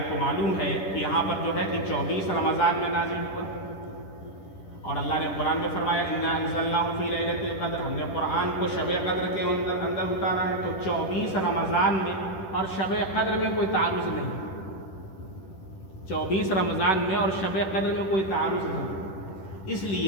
کو معلوم ہے کہ یہاں پر جو ہے کہ 24 رمضان میں نازل ہوا، اور اللہ نے قرآن میں فرمایا انا انزلناہ فی لیلۃ القدر، ہم نے قرآن کو شب قدر کے اندر اتارا ہے۔ تو 24 رمضان میں اور شب قدر میں کوئی تعارض نہیں، 24 رمضان میں اور شب قدر میں کوئی تعارض نہیں، اس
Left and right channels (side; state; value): right; late; 10 ms